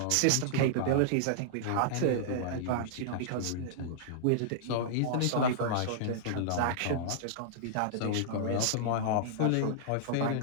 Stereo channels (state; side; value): different; both; correlation -0.02